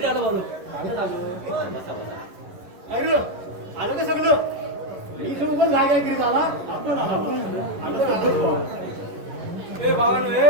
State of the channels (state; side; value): late; left; 11 ms